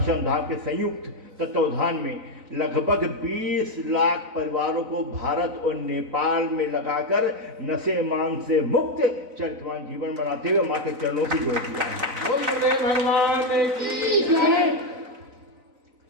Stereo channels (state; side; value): late; left; 4.0 ms